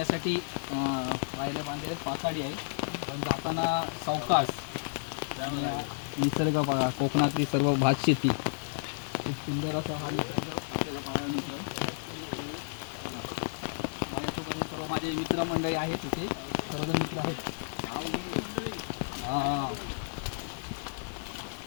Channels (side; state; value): right; silent; digital silence